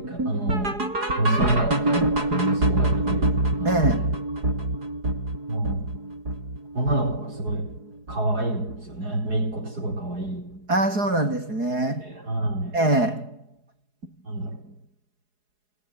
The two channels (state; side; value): late; left; 4.8 ms